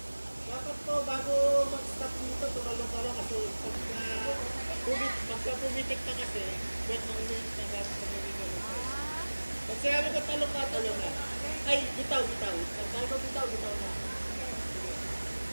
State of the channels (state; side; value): inverted; both; correlation -1.00